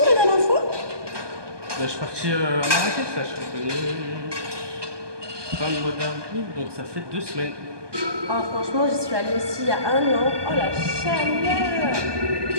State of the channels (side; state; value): left; late; 1.2 ms